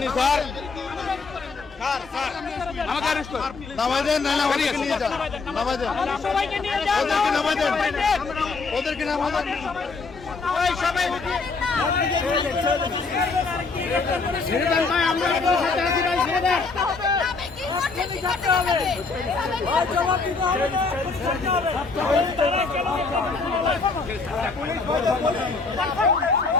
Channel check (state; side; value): quieter; right; 4.3 dB